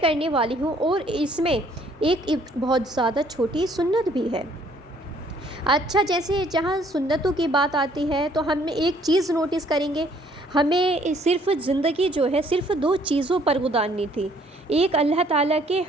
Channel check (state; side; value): normal; both; correlation 0.62